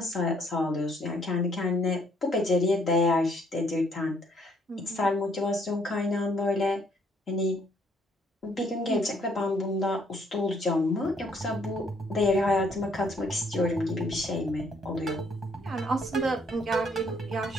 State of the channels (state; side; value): normal; both; correlation 0.67